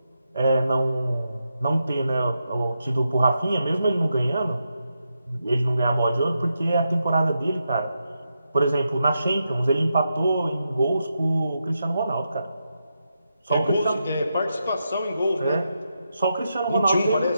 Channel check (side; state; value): both; inverted; correlation -0.85